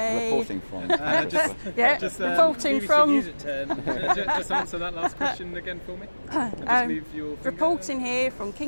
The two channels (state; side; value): inverted; both; correlation -1.00